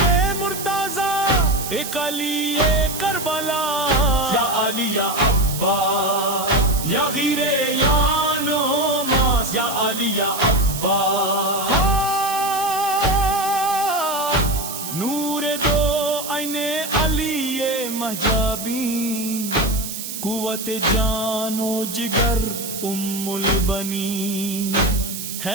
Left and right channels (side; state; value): right; noise; hiss, 7 dB below the sound